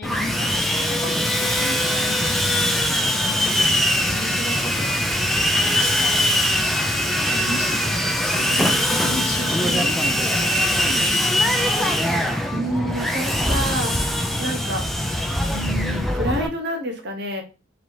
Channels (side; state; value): both; normal; correlation 0.72